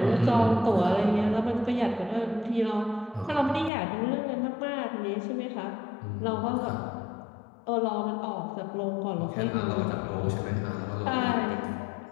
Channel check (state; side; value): drops out; right; at 3.7 s